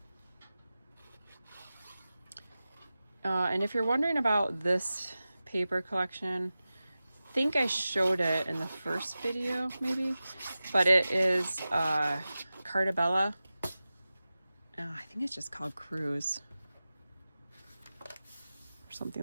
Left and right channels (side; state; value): both; inverted; correlation -0.95